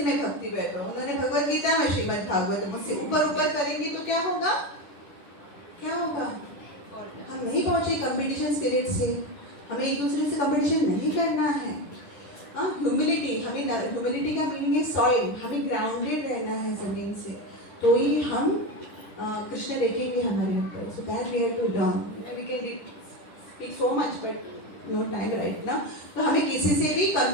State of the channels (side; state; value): right; late; 10 ms